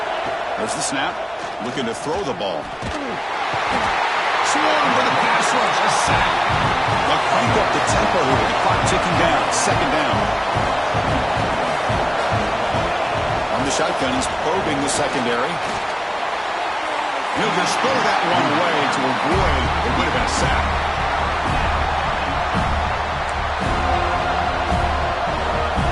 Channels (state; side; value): identical; both; correlation 1.00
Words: There's the snap. Looking to throw the ball. Swarm with a pass rush. A sack. They'll crank up the tempo here with the clock ticking down. 2nd down. On the shotgun, he's probing the secondary. He'll just throw that one away to avoid what would have been a sack.